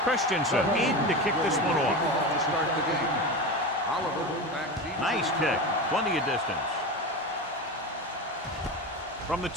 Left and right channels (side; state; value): both; normal; correlation 0.24